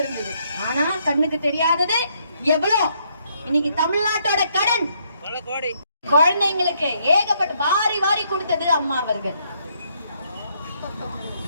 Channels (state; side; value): inverted; both; correlation -0.72